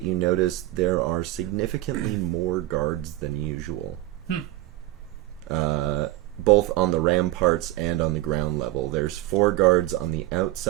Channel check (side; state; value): left; quieter; 16.5 dB